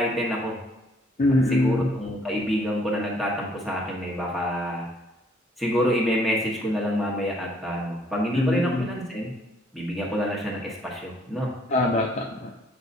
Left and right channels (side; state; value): both; normal; correlation 0.63